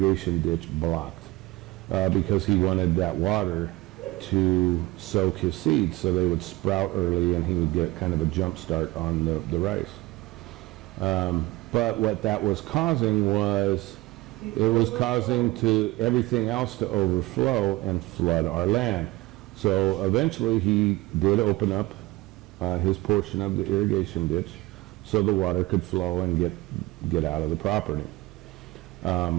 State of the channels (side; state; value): left; quieter; 20.1 dB